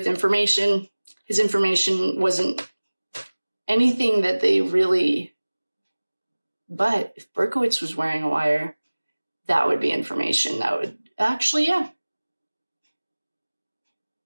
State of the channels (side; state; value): both; inverted; correlation -1.00